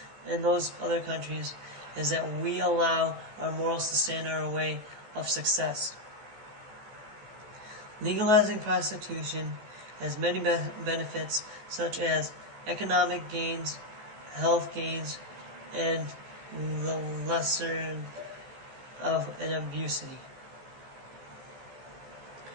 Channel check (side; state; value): left; late; 14 ms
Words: and those other countries is that we allow our morals to stand in our way of success. Legalizing prostitution has many benefits, such as economic gains, health gains, and the lesser of an abusity.